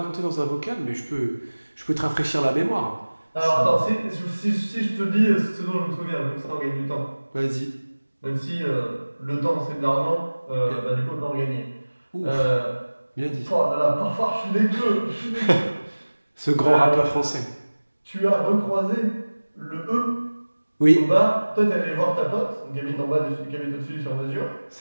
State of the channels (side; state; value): both; inverted; correlation -1.00